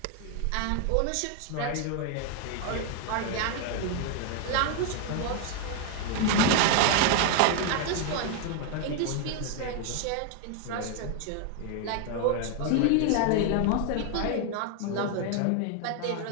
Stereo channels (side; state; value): both; different; correlation 0.01